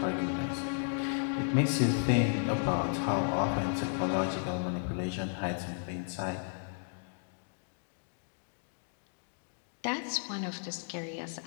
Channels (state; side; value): silent; right; digital silence